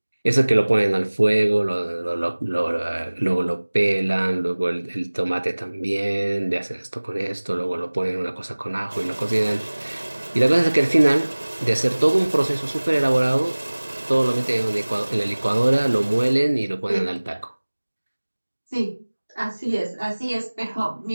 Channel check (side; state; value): both; inverted; correlation -1.00